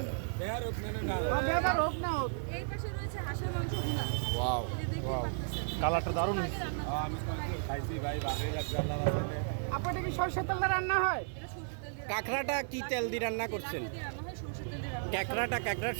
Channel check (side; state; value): left; silent; digital silence